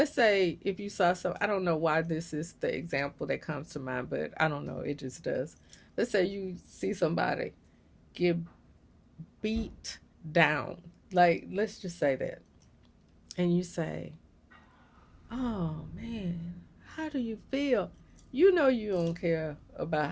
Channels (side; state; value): both; identical; correlation 1.00